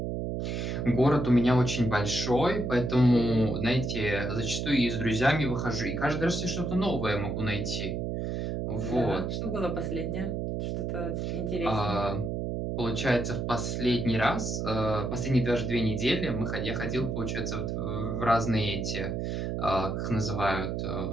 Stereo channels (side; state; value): right; noise; hum, 2 dB below the sound